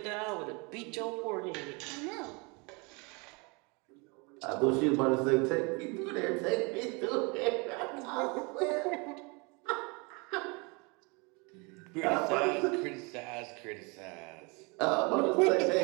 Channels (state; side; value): quieter; left; 29.8 dB